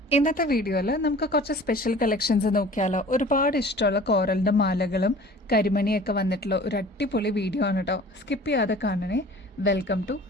ഇന്നത്തെ വീഡിയോയിൽ നമുക്ക് കുറച്ച് സ്പെഷ്യൽ കളക്ഷൻസ് നോക്കിയാലോ. ഒരുപാട് ഇഷ്ടമുള്ള കോറലിന്റെ മാലകളും കരിമണിയൊക്കെ വന്നിട്ടുള്ള ഒരു അടിപൊളി വീഡിയോ ആണ് കേട്ടോ. സ്കിപ്പ് ചെയ്യാതെ കാണണേ. Welcome to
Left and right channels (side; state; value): both; normal; correlation 0.45